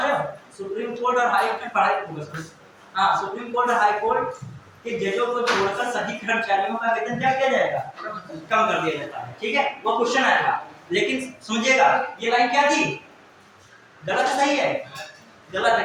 रहे हो, सुप्रीम कोर्ट और हाई कोर्ट, हाँ, सुप्रीम कोर्ट और हाई कोर्ट के जजों को छोड़कर सभी कर्मचारियों का वेतन क्या किया जाएगा, कम कर दिया जाता है, ठीक है। वो क्वेश्चन आया था, लेकिन समझिएगा ये लाइन क्या थी, गलत सही है, गलत है,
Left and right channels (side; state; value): both; identical; correlation 1.00